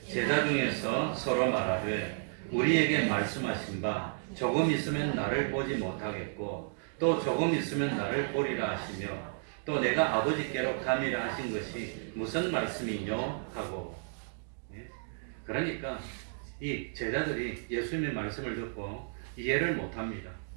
제자 중에서 서로 말하되 우리에게 말씀하신 바 조금 있으면 나를 보지 못하겠고 또 조금 있으면 나를 보리라 하시며 또 내가 아버지께로 가미라 하신 것이 무슨 말씀이뇨 하고. 그러니까 이 제자들이 예수님의 말씀을 듣고 이해를 못합니다.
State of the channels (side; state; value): left; silent; digital silence